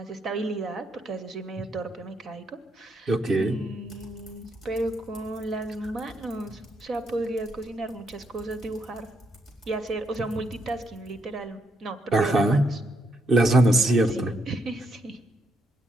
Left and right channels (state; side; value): normal; both; correlation 0.77